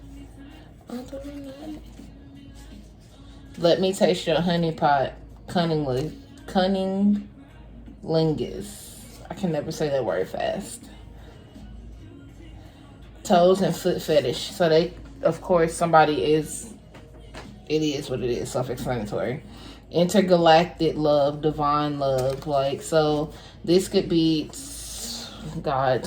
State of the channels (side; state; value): both; identical; correlation 1.00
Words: Let me taste your honey pot, cunninglingus. I can never say that word fast. Toes and foot fetish. So they, of course, it is what it is, self-explanatory. intergalactic love, divine love. Like, so this could be, God,